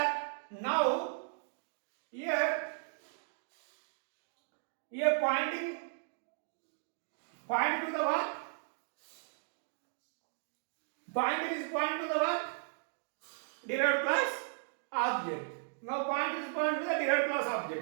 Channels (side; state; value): left; silent; digital silence